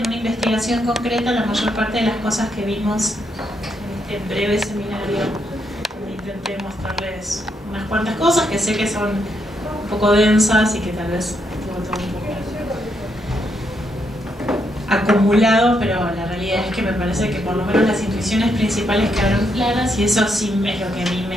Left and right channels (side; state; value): both; normal; correlation 0.78